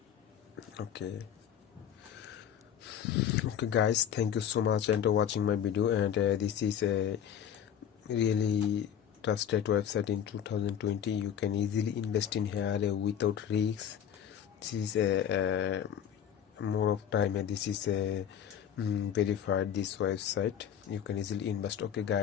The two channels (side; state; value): right; quieter; 9.1 dB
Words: Okay guys, thank you so much and watching my video. And this is a really trusted website in 2020. You can easily invest in here without risks. This is a more of time, and this is a verified this website. You can easily invest. Okay